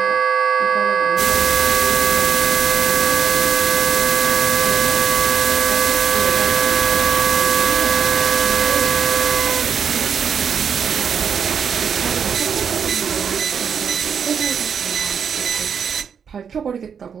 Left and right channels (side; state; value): left; quieter; 7.0 dB